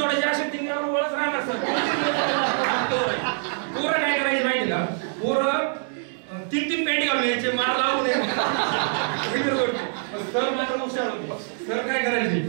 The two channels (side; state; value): left; silent; digital silence